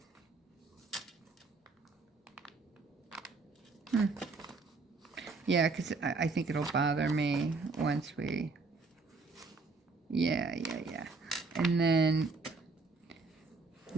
Yeah, because I think it'll bother me once we... Yeah. And then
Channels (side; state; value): left; quieter; 3.9 dB